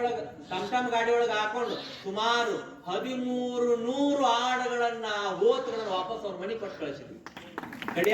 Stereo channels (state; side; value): identical; both; correlation 1.00